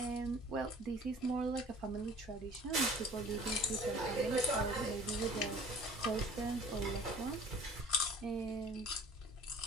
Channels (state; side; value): normal; both; correlation 0.48